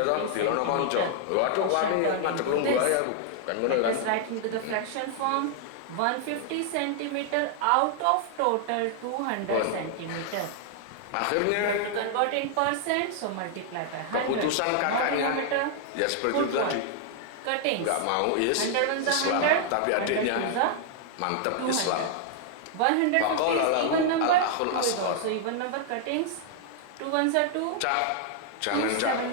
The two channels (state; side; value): different; both; correlation 0.00